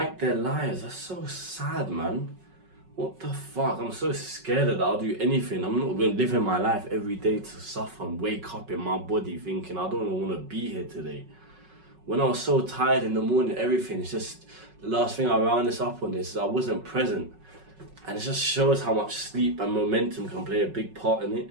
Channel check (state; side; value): late; left; 5.4 ms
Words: their lives. That's so sad, man. What the fuck? I'm so scared that I'll do anything. I'm not going to live in my life every day to suffer and wake up in my body thinking I don't want to be here today. When I was so tired in the morning, everything, it's just, the last thing I round this up on is I wasn't present. And it just shows how much sleep and momentum can play a big part in